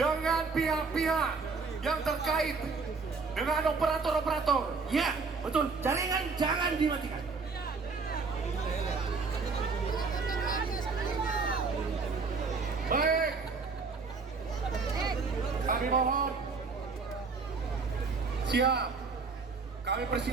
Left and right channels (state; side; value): quieter; left; 4.6 dB